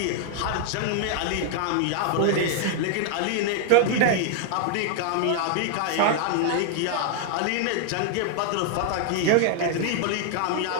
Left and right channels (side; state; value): both; different; correlation 0.00